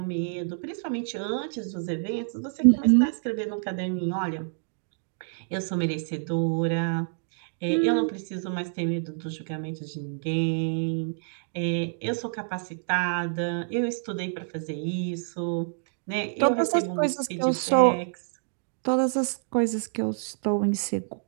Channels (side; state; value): left; silent; digital silence